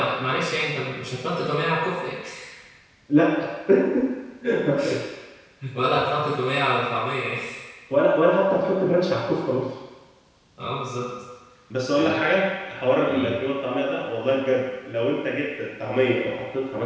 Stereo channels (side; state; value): both; identical; correlation 1.00